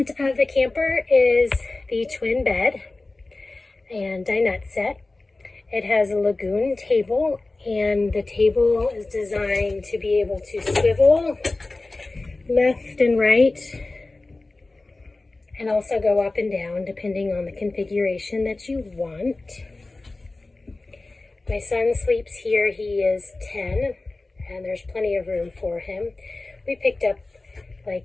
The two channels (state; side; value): quieter; right; 3.2 dB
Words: of the camper is the twin bed and dinette set. It has a lagoon table, and the table is designed to be able to swivel left and right and also go up and down depending on the configuration that you want. My son sleeps here. He is 10 and there's plenty of room for him. We picked up